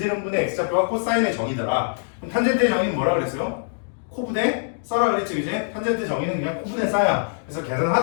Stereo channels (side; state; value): right; silent; digital silence